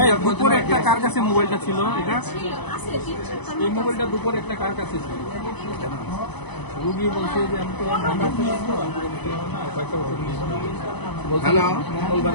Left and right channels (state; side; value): late; right; 0.99 ms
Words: দুপুরে একটা কার কাছে মোবাইলটা ছিল? এটা এই মোবাইলটা দুপুরে একটা কার কাছে ছিল? রুগী বলছে যে আমি তো ঢাকা থেকে আসবো, কয়েকটা ওষুধ নিয়েছি, হ্যালো,